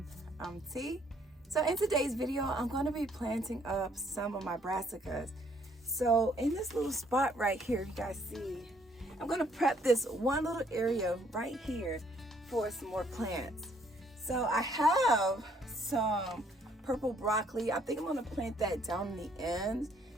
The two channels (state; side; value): normal; both; correlation 0.66